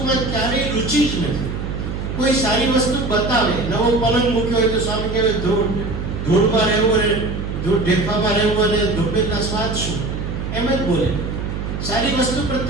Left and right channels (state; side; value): noise; right; hum, 5 dB below the sound